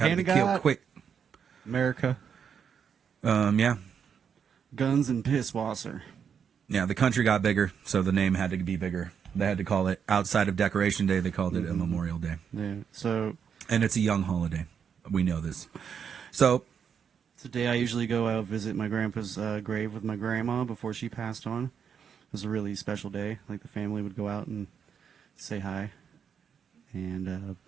to hand be of God. killed quick. America. Yeah. Guns and piss wasser. Yeah, the country got bigger, so the name had to be bigger. They had to call it, outside of Decoration Day, they called it a Memorial Day. Yeah. So And it's a young holiday. We know this. So, it's the day I usually go out visit my grandpa's grave with my grandma before she passed on. It was a really special day. Like the family would go out and say hi, and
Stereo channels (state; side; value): quieter; left; 7.3 dB